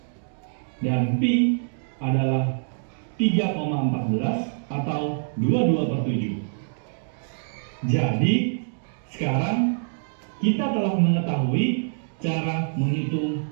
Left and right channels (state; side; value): silent; left; digital silence